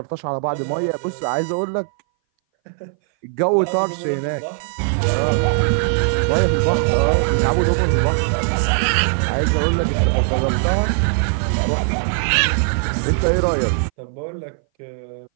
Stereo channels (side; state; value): left; silent; 61 dB below the other